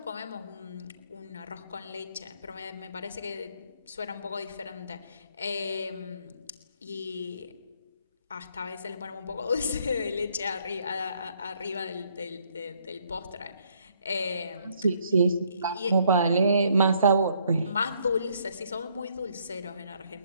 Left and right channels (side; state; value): both; inverted; correlation -0.68